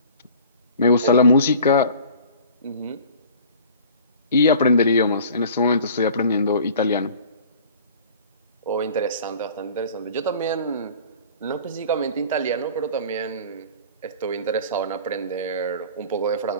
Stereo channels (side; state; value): both; inverted; correlation -0.45